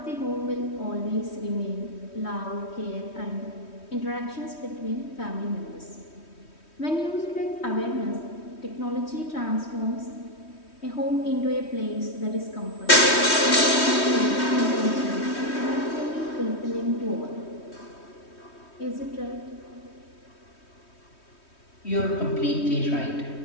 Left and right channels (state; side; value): late; right; 3.2 ms